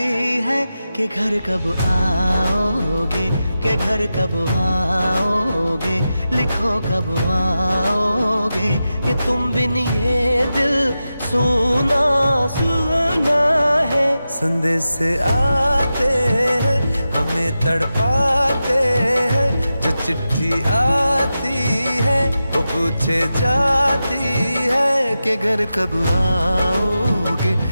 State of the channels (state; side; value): inverted; both; correlation -0.92